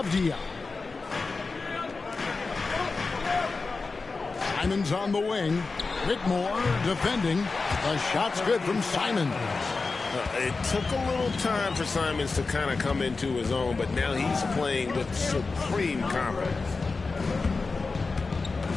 Simons on the wing. Whitmore defending. The shot's good from Simons. It took a little time for Simons to kind of come into his own, but now he's playing with supreme confidence.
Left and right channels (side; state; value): right; quieter; 4.1 dB